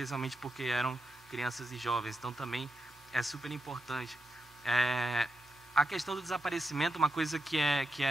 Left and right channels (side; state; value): both; normal; correlation 0.86